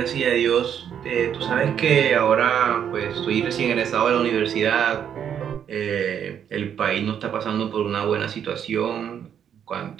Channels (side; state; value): left; quieter; 8.7 dB